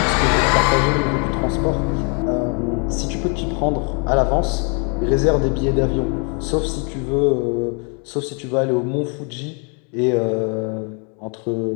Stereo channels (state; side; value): quieter; right; 37.7 dB